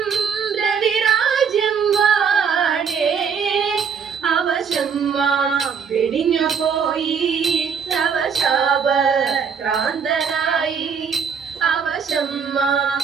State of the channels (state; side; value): quieter; left; 6.6 dB